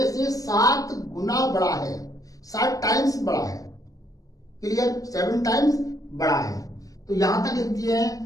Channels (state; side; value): late; right; 0.17 ms